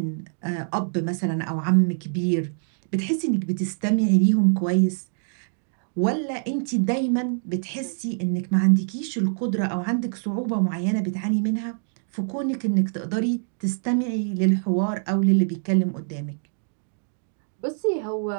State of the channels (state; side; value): silent; left; digital silence